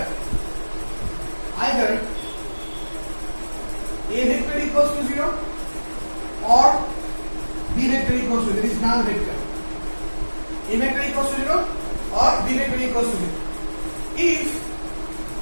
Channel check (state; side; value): inverted; both; correlation -1.00